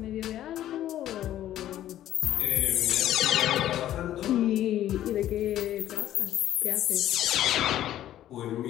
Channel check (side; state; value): right; quieter; 12.5 dB